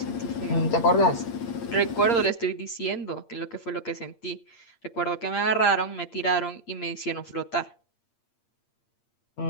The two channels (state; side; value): late; right; 8.7 ms